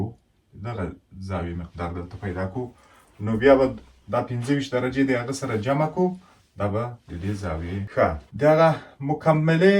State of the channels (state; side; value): identical; both; correlation 1.00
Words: دغه زاویې مقدار دلته پیدا کړو نو بیا به دا 25 درجې د هغه سره جمع کړو دا به د دې زاویې. ښه، دغه مکملې